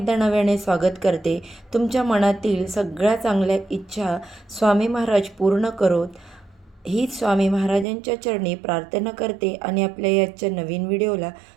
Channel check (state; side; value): drops out; left; at 7.9 s